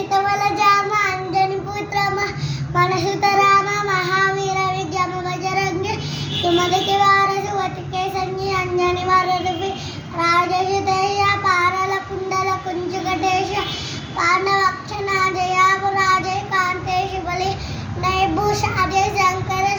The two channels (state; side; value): identical; both; correlation 1.00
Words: వల జామ అంజని పుత్రమ మనసుత రామ మహావీర విద్యమ బజరంగ సుమదికి వారసు వతికే సంజి అంజని వరదుపి రాజసుతేయ పారల కుండల కుంజుకటేశ పాండవక్షణ జయాపు రాజయ కాంతేశ బలి నైభూష అజయ శంకర